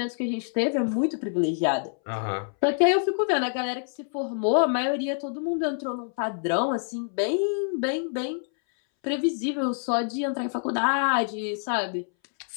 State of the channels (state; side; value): silent; right; 60 dB below the other